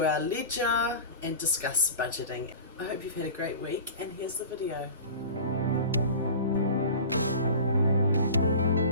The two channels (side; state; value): both; inverted; correlation -0.36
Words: our ledger and discuss budgeting. I hope you've had a great week, and here's the video.